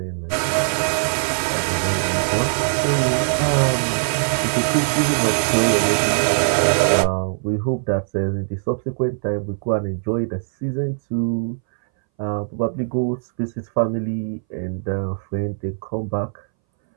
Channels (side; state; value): left; silent; 63 dB below the other